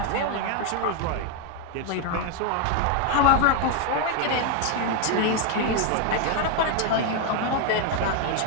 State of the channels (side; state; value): both; different; correlation 0.01